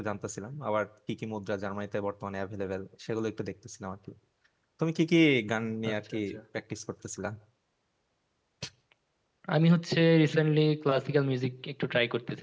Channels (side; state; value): both; identical; correlation 1.00